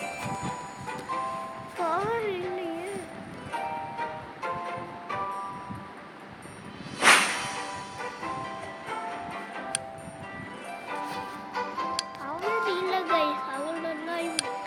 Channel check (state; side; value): identical; both; correlation 1.00